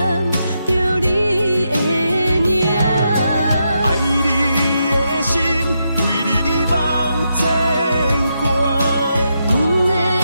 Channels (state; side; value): inverted; both; correlation -0.83